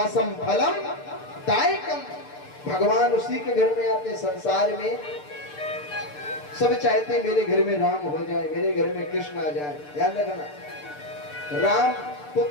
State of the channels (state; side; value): late; right; 6.7 ms